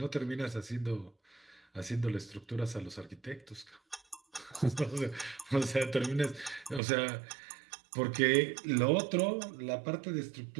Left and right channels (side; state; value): left; drops out; at 6.8 s